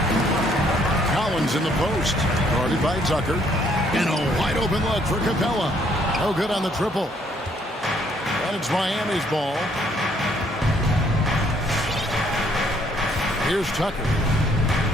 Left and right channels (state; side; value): normal; both; correlation 0.66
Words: Collins in the post. Guarded by Tucker. And a wide open look for Capella. No good on the triple. And it's Miami's ball. Here's Tucker.